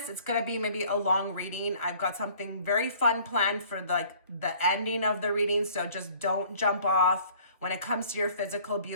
It's going to be maybe a long reading. I've got something very fun planned for the ending of the reading, so just don't jump off. When it comes to your physical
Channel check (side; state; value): both; inverted; correlation -0.54